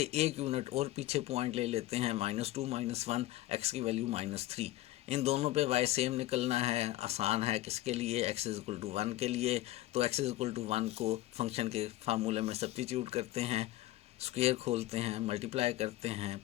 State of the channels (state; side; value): quieter; right; 16.2 dB